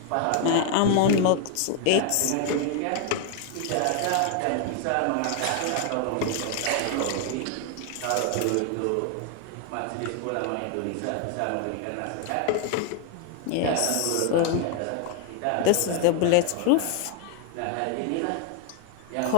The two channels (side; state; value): both; different; correlation 0.00